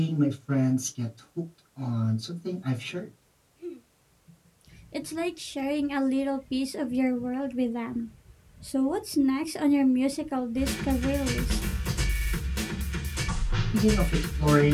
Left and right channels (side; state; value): both; identical; correlation 1.00